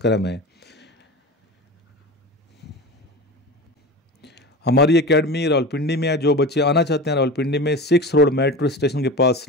है। हमारी एकेडमी रावलपिंडी में है। जो बच्चे आना चाहते हैं रावलपिंडी में 6 रोड मेट्रो स्टेशन के पास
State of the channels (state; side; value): normal; both; correlation 0.30